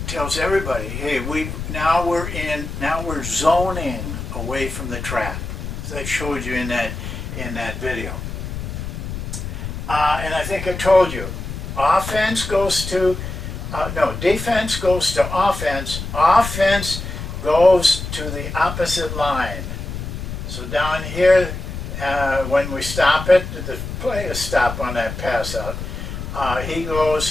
tells everybody, hey, now we're zoning away from the trap, as I showed you in that video. And I think I told you, defense goes to offense. Offense goes to the opposite line. So down here, when we stop it, the play is stop on that pass out. He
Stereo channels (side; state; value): left; noise; rumble, 7 dB below the sound